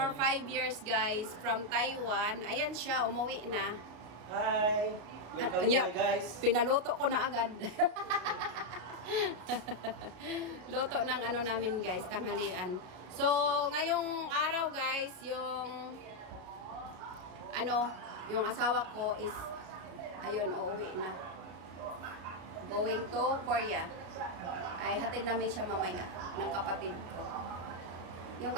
5 years guys from Taiwan. Ayan siya, umuwi na. Hi. Welcome to my guys. Pinaluto ko na agad. Luto ng namin guys, tanghalian. So, ngayong araw guys, yung asawa ko is ayun, uuwi na. Going to Korea. Ay, hatid namin siya mamaya ng kapatid ko. Yung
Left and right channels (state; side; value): late; left; 33 ms